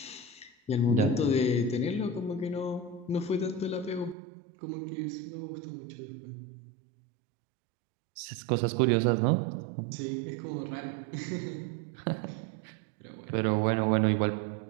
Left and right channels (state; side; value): drops out; left; at 4.2 s